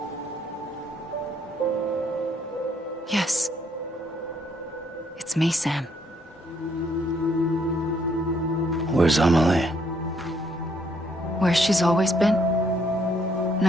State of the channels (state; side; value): normal; both; correlation 0.70